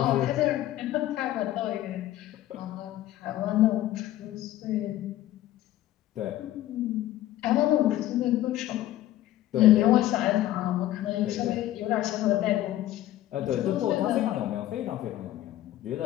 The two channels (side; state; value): right; quieter; 14.2 dB